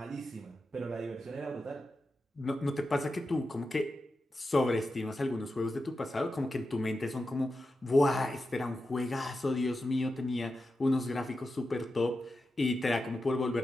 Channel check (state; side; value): normal; both; correlation 0.90